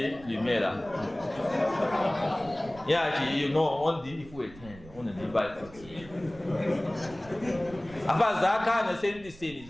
lumière yaki you know on dit il faut éteindre on ne dit pas il faut tuer afa zaka na sendi seni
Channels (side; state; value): right; noise; rumble, 19 dB below the sound